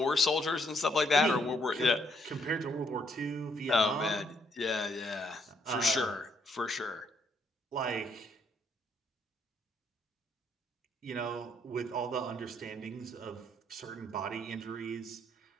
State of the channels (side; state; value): both; normal; correlation 0.70